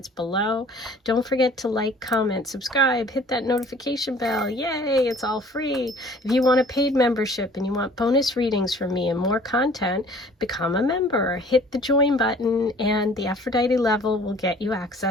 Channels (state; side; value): normal; both; correlation 0.52